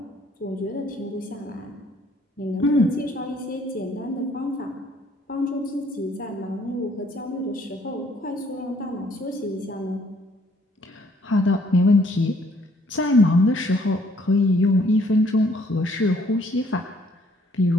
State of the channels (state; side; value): normal; both; correlation 0.63